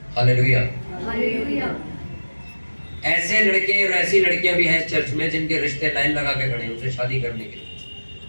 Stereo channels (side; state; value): both; inverted; correlation -1.00